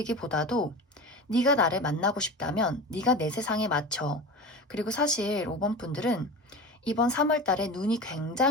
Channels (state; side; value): normal; both; correlation 0.31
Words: 네가 나를 만나고 싶다면 네가 내 세상에 맞춰. 그리고 사실 5번 분들은 이번 3월 달에 눈이